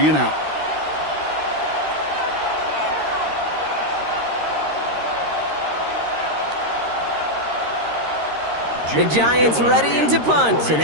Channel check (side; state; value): left; late; 13 ms